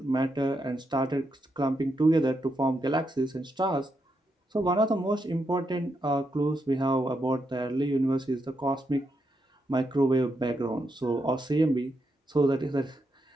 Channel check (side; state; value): both; normal; correlation 0.82